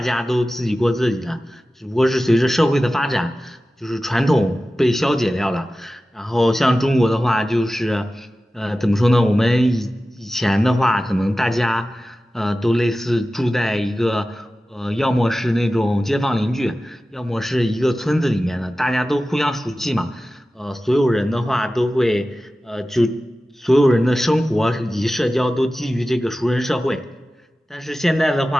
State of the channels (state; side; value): normal; both; correlation 0.95